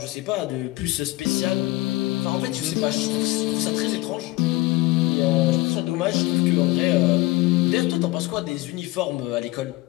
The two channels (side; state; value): right; quieter; 19.6 dB